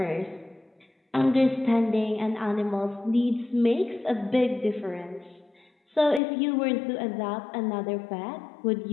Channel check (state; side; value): drops out; right; at 6.2 s